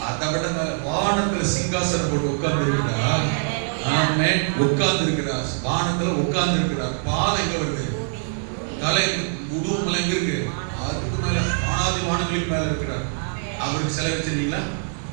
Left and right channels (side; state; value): left; silent; digital silence